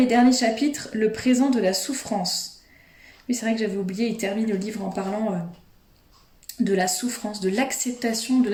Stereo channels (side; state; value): both; identical; correlation 1.00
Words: et dernier chapitre, le présent de la souffrance. Oui, c'est vrai que j'avais oublié, il termine le livre en parlant de la souffrance, de l'acceptation de